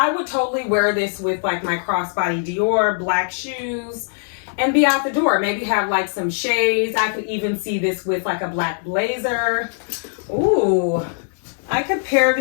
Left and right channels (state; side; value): silent; right; digital silence